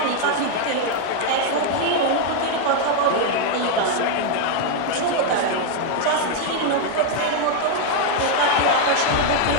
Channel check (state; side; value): different; both; correlation 0.01